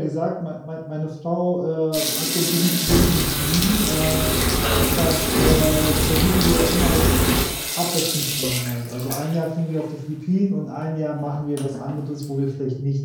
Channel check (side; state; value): both; identical; correlation 1.00